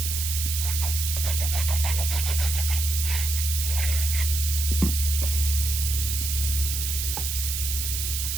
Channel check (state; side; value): noise; right; hiss, 2 dB below the sound